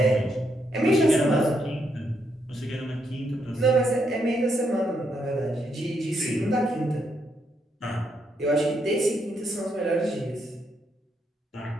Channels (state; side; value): normal; both; correlation 0.77